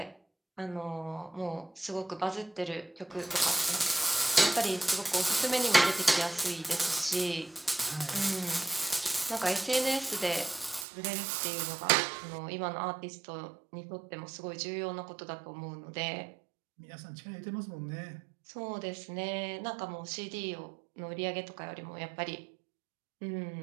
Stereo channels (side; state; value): left; drops out; at 10.9 s